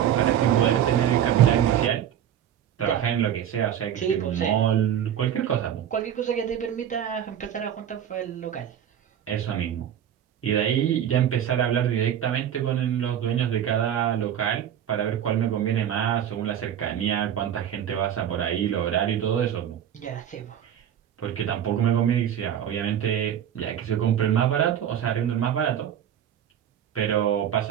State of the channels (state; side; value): quieter; left; 9.9 dB